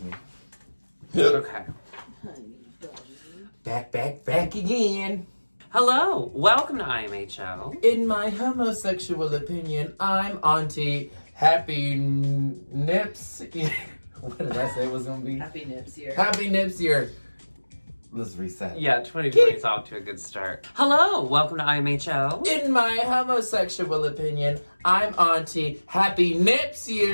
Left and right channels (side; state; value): both; inverted; correlation -1.00